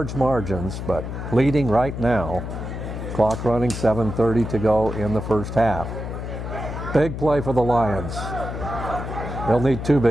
margins, but leading right now. Clock running, 7:30 to go in the first half. Big play for the Lions. They'll need 2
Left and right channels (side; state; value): left; noise; hum, 6 dB below the sound